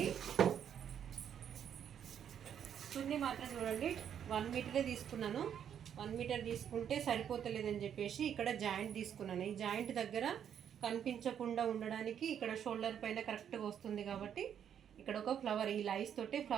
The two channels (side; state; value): left; quieter; 8.9 dB